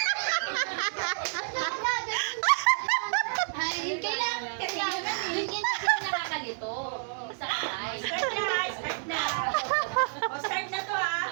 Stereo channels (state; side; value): silent; left; 58 dB below the other